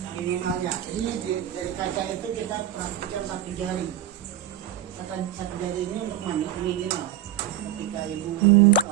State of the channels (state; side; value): quieter; left; 11.2 dB